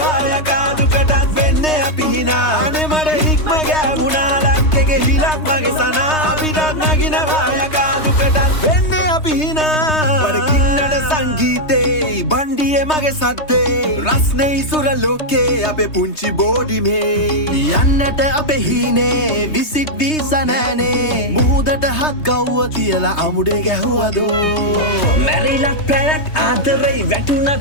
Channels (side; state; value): right; late; 3.2 ms